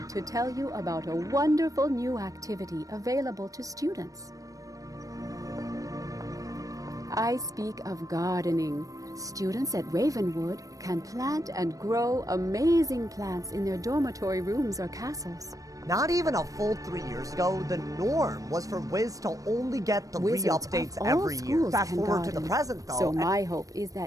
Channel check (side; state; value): left; late; 0.16 ms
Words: to tell you about a wonderful new activity available to students. I speak of gardening. Students at Ravenwood can plant and grow amazing plants in their dormitory rooms or castles. Not even a full 3 years ago, the norm was for Wiz to only get the re-updates every year. Fast forward to the present, though. So my hope is